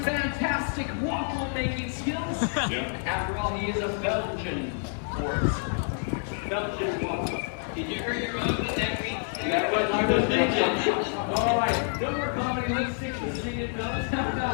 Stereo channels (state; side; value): silent; right; 57 dB below the other